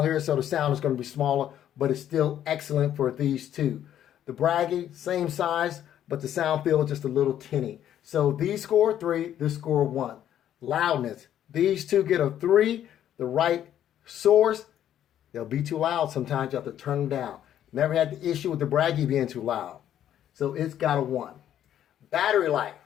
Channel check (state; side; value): quieter; right; 10.9 dB